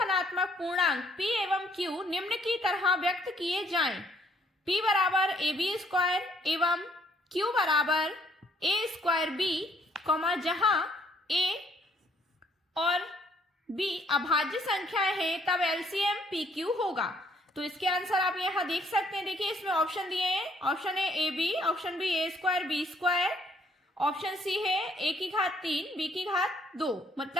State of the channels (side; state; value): both; normal; correlation 0.65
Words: पूर्णांक p एवं q निम्न की तरह व्यक्त किए जाएं, p बराबर ab स्क्वायर एवं q बराबर a स्क्वायर b, जहां a और b अभाज्य संख्याएं हैं, तब एलसीएम pq होगा। तो इसके आंसर आप यहां देख सकते हैं। देखिए इसमें ऑप्शन दिए हैं, option A A B, option B A square B square, option C है a की घात 3 b की घात 2,